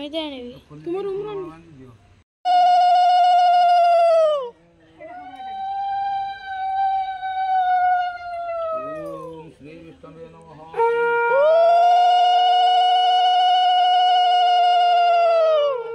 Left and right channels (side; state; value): both; identical; correlation 1.00